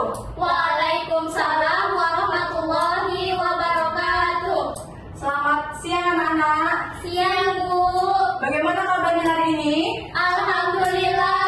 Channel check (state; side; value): identical; both; correlation 1.00